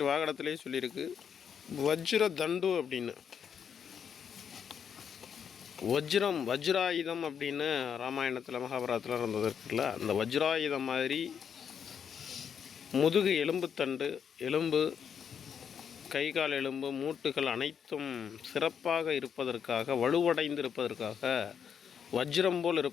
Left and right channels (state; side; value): quieter; right; 7.6 dB